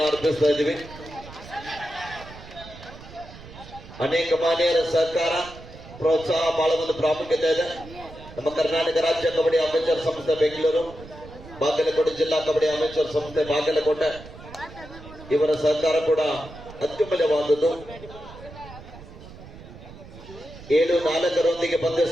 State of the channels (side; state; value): right; noise; rumble, 17 dB below the sound